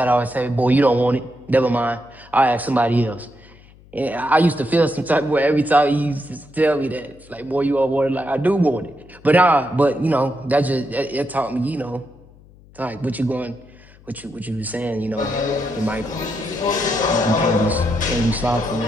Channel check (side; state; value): left; noise; hum, 25 dB below the sound